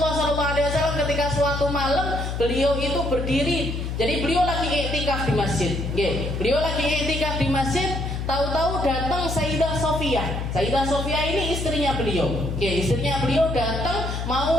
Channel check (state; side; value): noise; left; hum, 3 dB below the sound